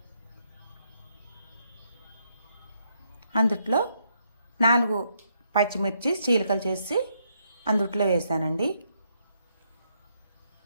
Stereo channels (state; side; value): inverted; both; correlation -0.76